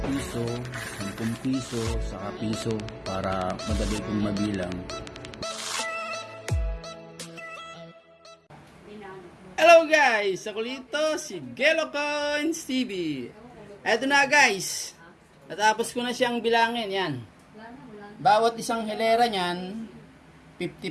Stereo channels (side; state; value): both; identical; correlation 1.00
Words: piso, 10 piso, saka piso para madali kong mabilang. Hello guys! Ako dito si Gelo Coins TV. Eto na guys, natapos ko na siyang bilangin yan. Bawat isang hilera niyan, 50